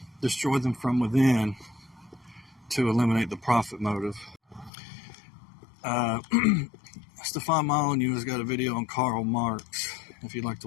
destroy them from within to eliminate the profit motive. Stefan Molyneux has got a video on Karl Marx. If you'd like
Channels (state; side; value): drops out; right; at 4.7 s